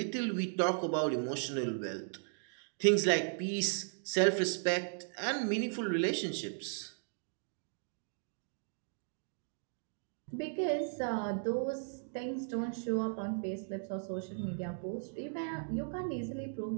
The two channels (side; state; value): left; silent; digital silence